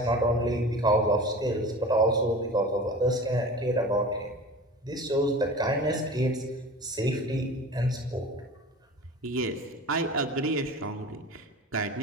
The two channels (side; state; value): both; normal; correlation 0.37